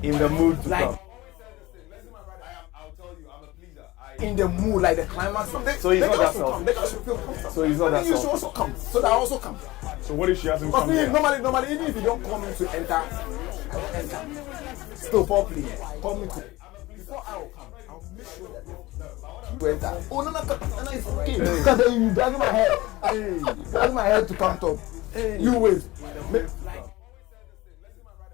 in the mood to come. In the mood, like the climax. So he's not that selfish. They should feel comfortable. So he's not that selfish. You should also come, so that I also come. So what if she hasn't come yet? Normally, even if you don't call me to enter, I will enter. Still foreplay. Call me to. Before I will come, I'll make sure that you enter. Oh no, it's okay. Because then you dragging my head. Dragging my head to come top. You wait.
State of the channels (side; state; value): right; quieter; 19.2 dB